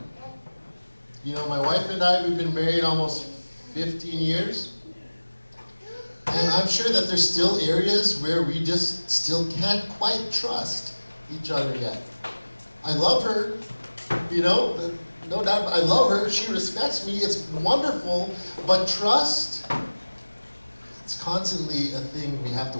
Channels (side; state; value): both; inverted; correlation -1.00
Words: You know, my wife and I, we've been married almost 15 years. And I'm sure that there's still areas where we just still can't quite trust each other yet. I love her, you know, no doubt, I love her. She respects me. It's wonderful. But trust, it's constantly a thing we have to